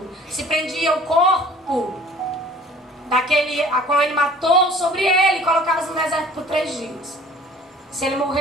se prendia o corpo daquele a qual ele matou sobre ele, colocava no deserto por 3 dias. Se ele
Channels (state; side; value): normal; both; correlation 0.50